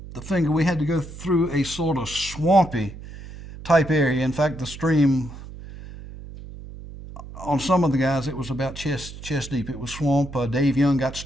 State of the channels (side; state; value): right; noise; hum, 14 dB below the sound